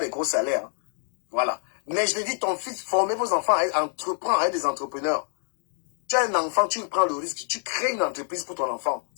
gros salaires. Hein. Voilà. Mais je te dis, ton fils, formez vos enfants à entreprendre, à être des entrepreneurs. Tu as un enfant, tu prends le risque, tu crées une entreprise pour ton enfant.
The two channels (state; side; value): silent; right; 56 dB below the other